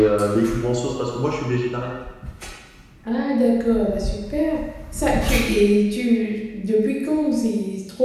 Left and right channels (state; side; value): identical; both; correlation 1.00